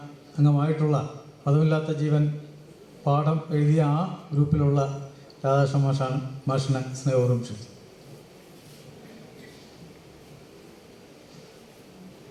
അംഗമായിട്ടുള്ള പദമില്ലാത്ത ജീവൻ പാഠം എഴുതിയ ആ ഗ്രൂപ്പിലുള്ള രാധാകൃഷ്ണ മാഷിനെ സ്നേഹപൂർവ്വം ക്ഷണിച്ചു.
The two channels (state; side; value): identical; both; correlation 1.00